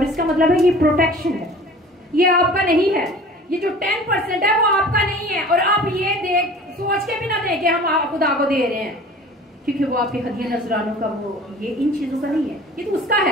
इसका मतलब है ये प्रोटेक्शन है, ये आपका नहीं है। ये जो 10% है वो आपका नहीं है। और आप ये सोच के भी ना दें कि हम खुदा को दे रहे हैं, क्योंकि वो आपके हदिया नजरानों का वो ये इन चीजों का नहीं है, ये तो उसका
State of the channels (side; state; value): both; normal; correlation 0.44